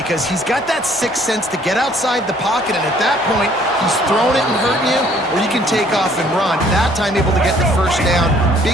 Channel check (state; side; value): normal; both; correlation 0.60